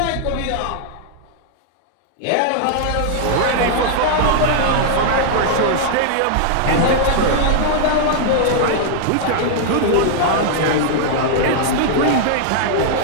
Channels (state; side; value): different; both; correlation -0.01